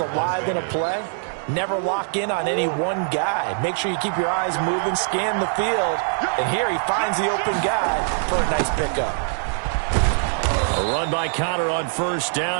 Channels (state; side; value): silent; left; digital silence